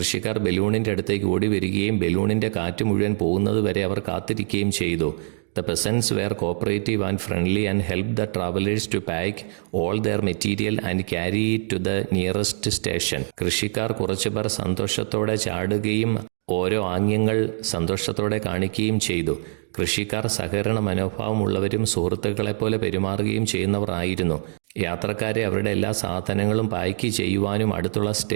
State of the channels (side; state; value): left; silent; digital silence